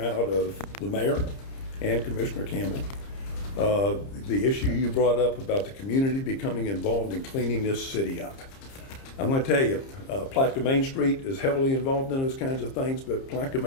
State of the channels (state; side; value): late; right; 30 ms